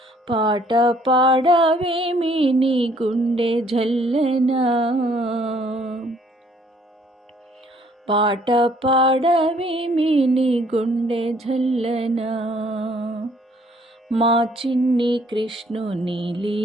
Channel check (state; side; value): normal; both; correlation 0.62